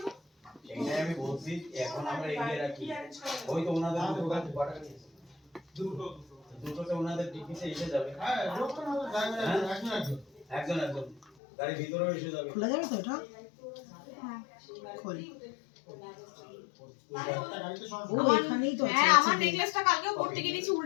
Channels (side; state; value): right; drops out; at 11.2 s